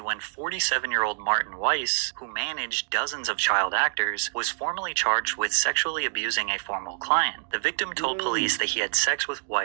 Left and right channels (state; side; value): silent; left; digital silence